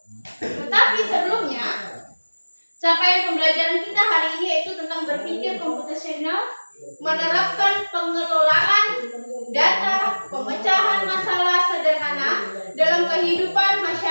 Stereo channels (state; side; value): inverted; both; correlation -1.00